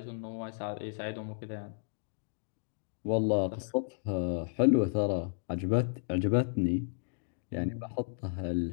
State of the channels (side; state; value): right; silent; digital silence